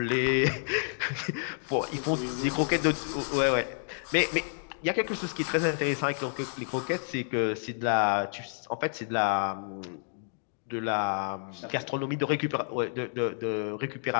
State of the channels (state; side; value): silent; right; digital silence